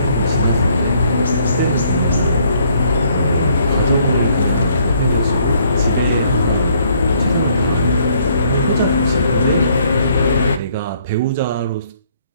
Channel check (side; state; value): both; inverted; correlation -0.66